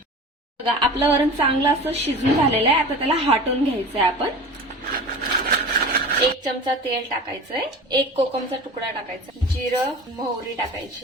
बघा आपलं वरण चांगलं असं शिजून झालेलं आहे। आता त्याला हटवून घ्यायचंय आपण। 1 चमचा तेल टाकायचंय, 1 कोकमचा तुकडा टाकायचा, जिरं मोहरी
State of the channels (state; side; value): normal; both; correlation 0.35